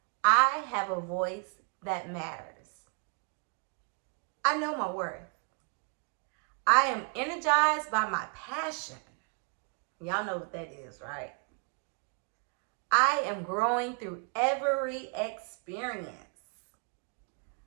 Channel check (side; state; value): left; quieter; 37.7 dB